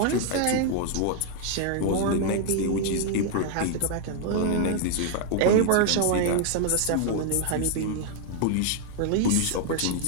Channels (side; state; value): both; different; correlation 0.00